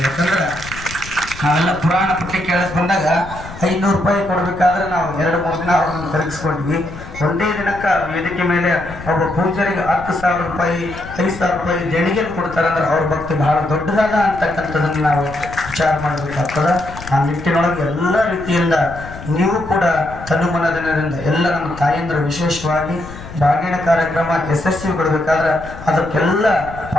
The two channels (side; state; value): left; noise; rumble, 14 dB below the sound